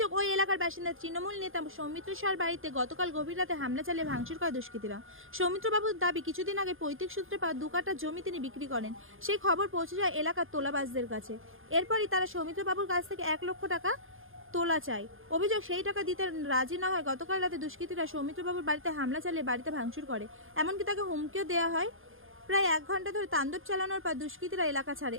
ওই এলাকার বাসিন্দা তৃণমূল নেতা সৌমিত্র সার বাড়িতে গতকাল গভীর রাতে হামলা চালিয়ে ভাঙচুর করে দুষ্কৃতীরা। সৌমিত্রবাবুর দাবি, কিছুদিন আগে পৈতৃক সূত্রে পাওয়া 2 কাঠা জমি তিনি বিক্রি করেন। সেই খবর পৌঁছে যায় এলাকার তোলাবাজদের কাছে। এরপরই তারা সৌমিত্রবাবুর কাছ থেকে 1 লক্ষ টাকা তোলা চাই। অভিযোগ, সেই টাকা দিতে রাজি না হয় গতকাল রাতে দুষ্কৃতীরা সৌমিত্রবাবুর বাড়িতে হামলা চালিয়ে বাড়িতে ভাঙচুর করে। এমনকি তাকে হুমকিও দেওয়া হয়। প্রায় 1 ঘন্টা ধরে তাণ্ডব চালানোর পর দুষ্কৃতীরা এলাকা ছাড়ে।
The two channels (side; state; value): left; late; 0.59 ms